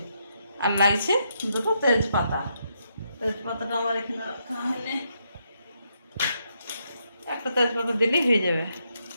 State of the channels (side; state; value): both; inverted; correlation -0.79